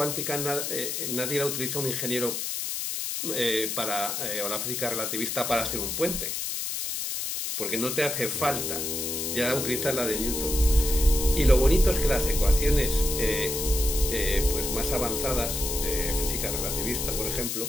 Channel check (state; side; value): noise; left; hiss, 3 dB below the sound